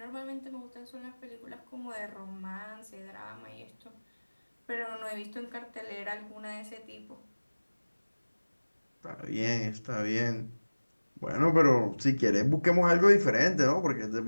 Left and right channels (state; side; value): inverted; both; correlation -1.00